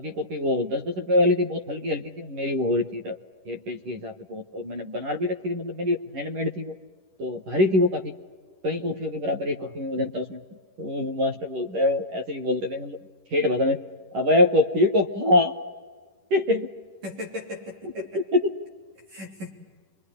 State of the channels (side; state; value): left; late; 11 ms